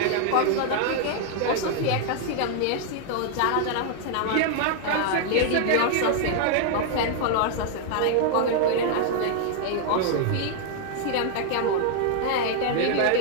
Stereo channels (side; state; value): both; different; correlation -0.01